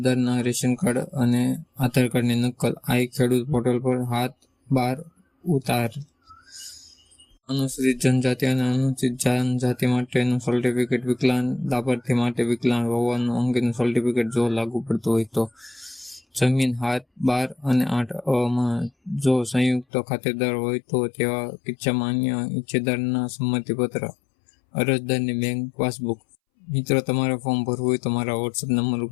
રેશન કાર્ડ અને આધાર કાર્ડની નકલ। આ ખેડૂત પોર્ટલ પર હાથ બાર ઉતાર। અનુસૂચિત જનજાતિ અને અનુસૂચિત જનજાતિ માટેનું સર્ટિફિકેટ। વિકલાંગ લાભાર્થી માટે વિકલાંગ હોવાનું અંગેનું સર્ટિફિકેટ જો લાગુ પડતું હોય તો। જમીન હાથ 12 અને 8 જો સંયુક્ત ખાતેદાર હોય તો તેવા કિસ્સામાં અન્ય હિસ્સેદારના સંમતિપત્ર। અરજદારની બેંક પાસબુક। મિત્રો, તમારે ફોર્મ ભરવું હોય તો મારા વોટ્સએપ નંબર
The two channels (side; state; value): right; drops out; at 19.9 s